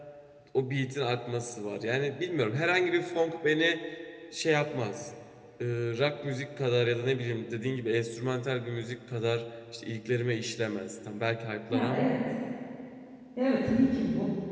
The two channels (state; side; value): identical; both; correlation 1.00